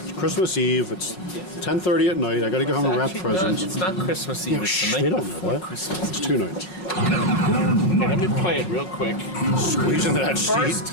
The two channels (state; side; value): late; right; 5.4 ms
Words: Christmas Eve. It's 10:30 at night. I got to go home and wrap Actually, presents. No, it's not Christmas Eve. Yeah, It's shh, the night they don't know before that. Christmas. It's 2 nights. Okay, let me play it real quick. Squeeze into that First seat.